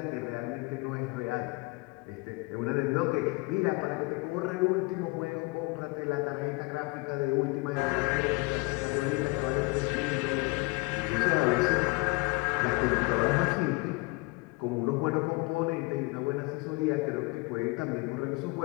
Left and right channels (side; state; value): right; quieter; 26.3 dB